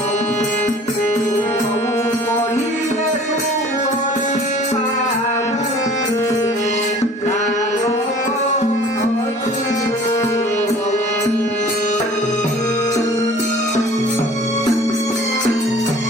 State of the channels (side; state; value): both; normal; correlation 0.48